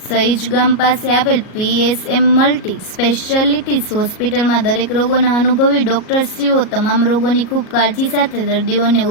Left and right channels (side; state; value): right; late; 37 ms